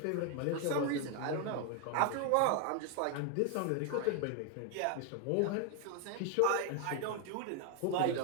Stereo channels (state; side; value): different; both; correlation 0.01